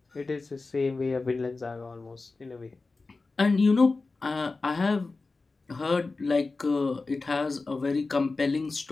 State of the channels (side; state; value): right; quieter; 3.7 dB